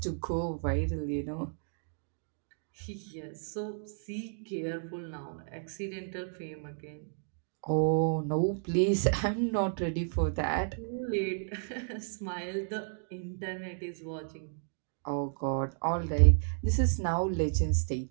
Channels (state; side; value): silent; left; digital silence